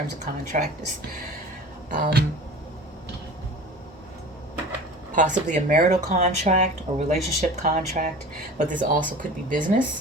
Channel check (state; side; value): normal; both; correlation 0.38